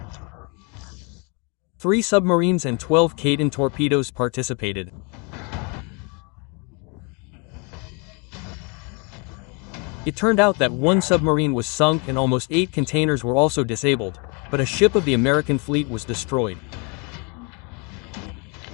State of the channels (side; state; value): right; quieter; 33.0 dB